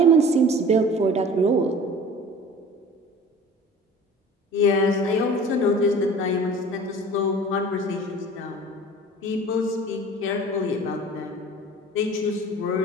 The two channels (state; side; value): normal; both; correlation 0.43